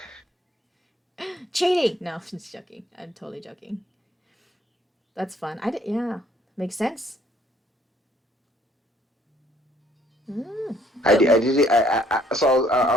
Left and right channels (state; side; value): normal; both; correlation 0.63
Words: cheating. No, I'm just joking. I'm totally joking. That's fun. Yeah, makes sense. Mm. I did it. So